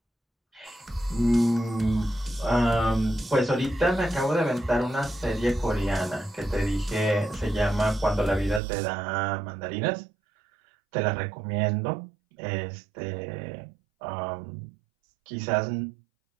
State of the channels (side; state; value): left; drops out; at 8.6 s